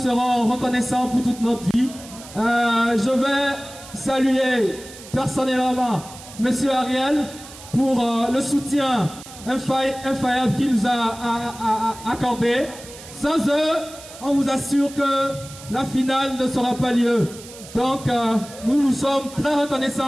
reconnaissants pour toute notre vie. Je vais saluer personnellement Monsieur Ariel pour le soutien infaillible qu'il nous a accordé. Sans eux, on vous assure que la finale ne sera pas lieu. Donc, nous sommes très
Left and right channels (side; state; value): right; noise; hiss, 17 dB below the sound